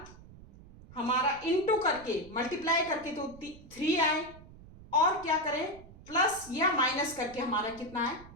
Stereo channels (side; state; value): right; noise; rumble, 19 dB below the sound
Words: इनटू करके, मल्टीप्लाई करके तो 3 आए, और क्या करें, प्लस या माइनस करके हमारा कितना है,